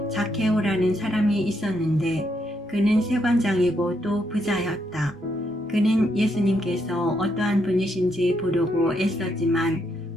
zakhe오라는 사람이 있었는데 그는 세관장이고 또 부자였다. 그는 예수님께서 어떠한 분이신지 보려고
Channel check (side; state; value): both; normal; correlation 0.77